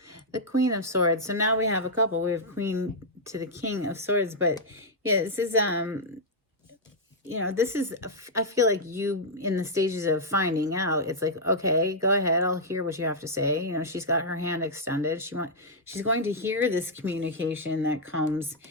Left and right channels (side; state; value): both; normal; correlation -0.06